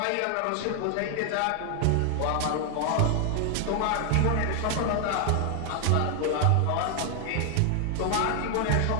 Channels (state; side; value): different; both; correlation 0.00